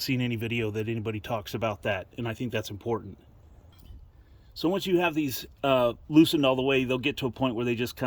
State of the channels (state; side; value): identical; both; correlation 1.00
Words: seen any video that anybody talks about that, and I think that's important. So once you have these loosened all the way, they'll get to a point where they just